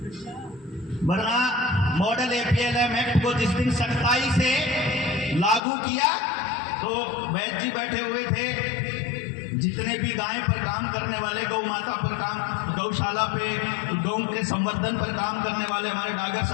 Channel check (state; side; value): drops out; right; at 5.6 s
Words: वरना मॉडल APLM एक्ट को जिस दिन सख्ताई से लागू किया तो वैद्य जी बैठे हुए थे, जितने भी गाय पर काम करने वाले, गौ माता पर काम, गौशाला पे गौ के संवर्धन पर काम करने वाले हमारे डागर